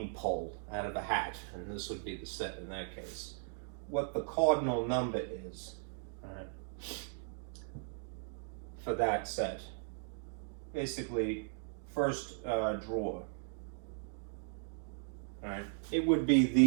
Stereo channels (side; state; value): left; silent; digital silence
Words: pull out of a hat, and this would be the set in that case, what the cardinal number is, right, for that set. Basically, first drawer. Right? It would be